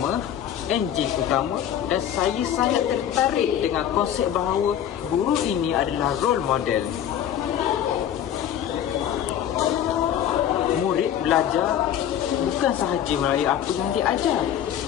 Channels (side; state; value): right; quieter; 10.2 dB